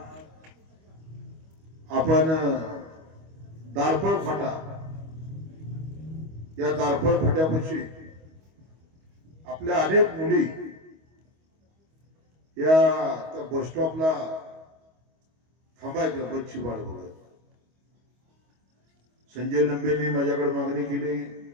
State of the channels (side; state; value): left; late; 25 ms